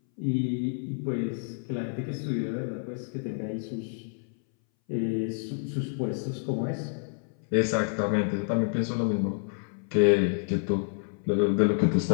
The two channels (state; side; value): silent; right; 59 dB below the other